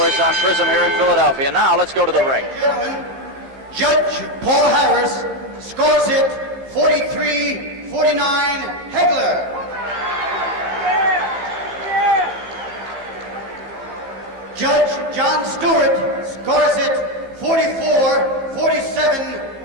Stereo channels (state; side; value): late; left; 15 ms